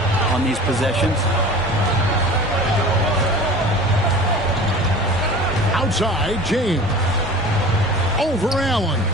on these possessions. Outside, James. Over Allen.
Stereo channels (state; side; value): normal; both; correlation 0.39